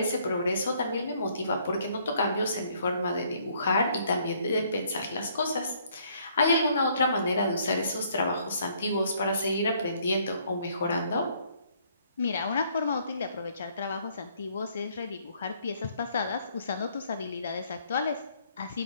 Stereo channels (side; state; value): both; inverted; correlation -0.65